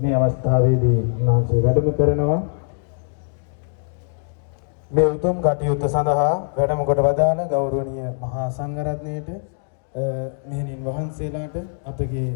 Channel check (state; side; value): silent; right; digital silence